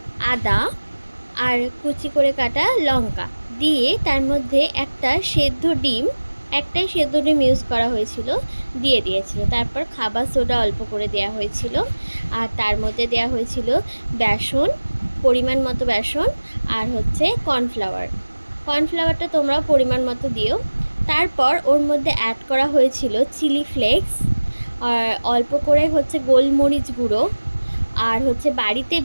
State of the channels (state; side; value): inverted; both; correlation -1.00